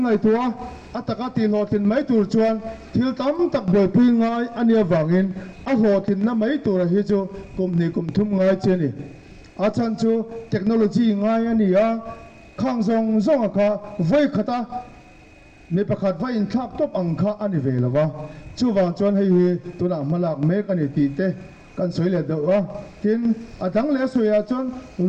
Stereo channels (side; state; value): both; identical; correlation 1.00